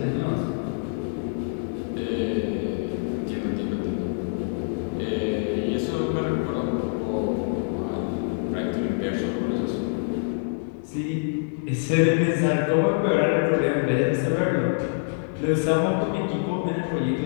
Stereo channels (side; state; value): right; silent; digital silence